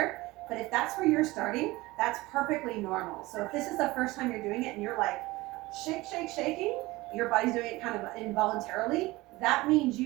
But if that's where you're starting, that's perfectly normal. So if this is the first time you're doing it and you're like, shake, shake, shaking, your body's doing it kind of involuntarily, that means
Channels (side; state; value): left; quieter; 20.4 dB